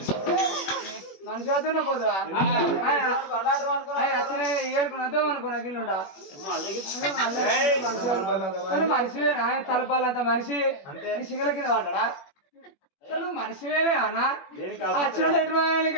మనిషి అవుతున్నా పోదురా ఏడుకున్నద్దాం అనుకున్నా గిల్లుండా మనిషివేనా తలపాలంత మనిషి సింగల కింద పడ్డా అసలు మనిషివేనే అన్న వచ్చినటువంటి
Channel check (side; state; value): right; late; 21 ms